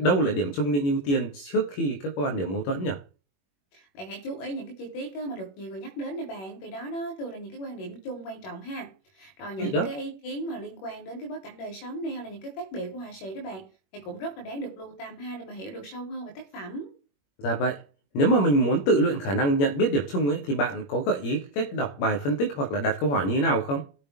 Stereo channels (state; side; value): late; right; 21 ms